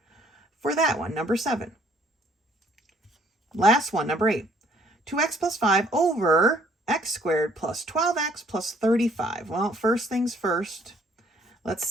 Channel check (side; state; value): both; normal; correlation 0.62